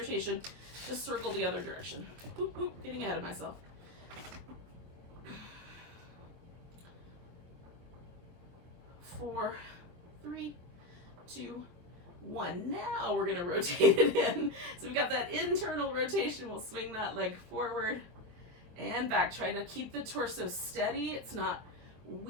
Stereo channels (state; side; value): late; left; 23 ms